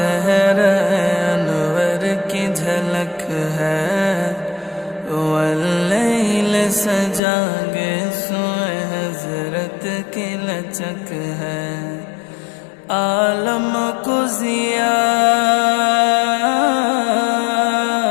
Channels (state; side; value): drops out; right; at 7.2 s